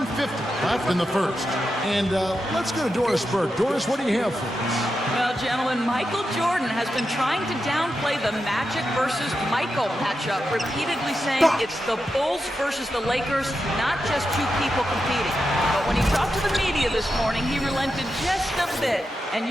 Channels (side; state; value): both; normal; correlation 0.88